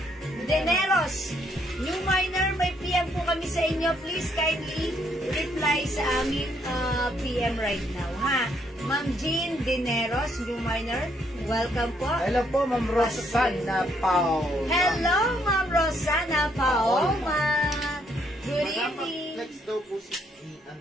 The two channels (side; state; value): both; normal; correlation 0.72